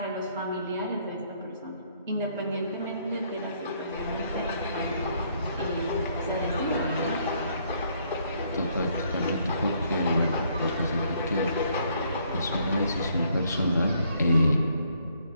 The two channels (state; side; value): inverted; both; correlation -0.68